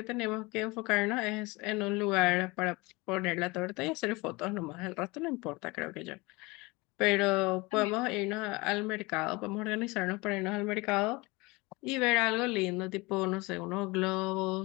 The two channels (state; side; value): quieter; right; 23.9 dB